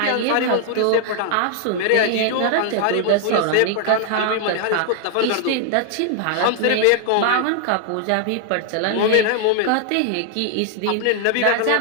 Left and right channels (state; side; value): different; both; correlation 0.00